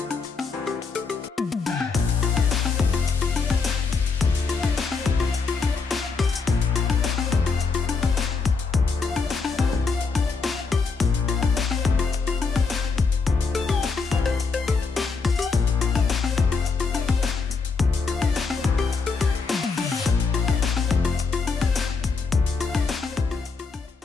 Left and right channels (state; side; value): quieter; right; 4.6 dB